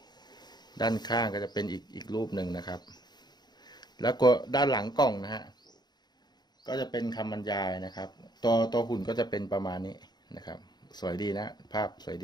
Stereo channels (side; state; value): right; late; 0.20 ms